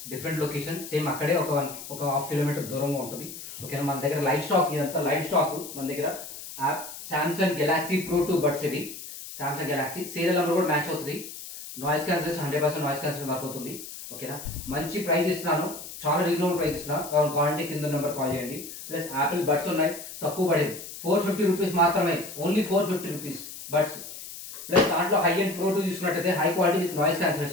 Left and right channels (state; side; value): noise; left; hiss, 12 dB below the sound